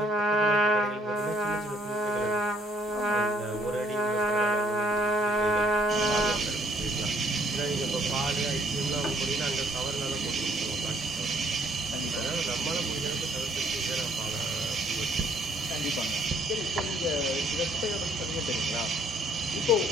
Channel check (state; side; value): normal; both; correlation 0.64